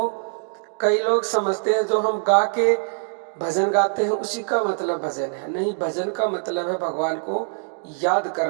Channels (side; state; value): left; silent; digital silence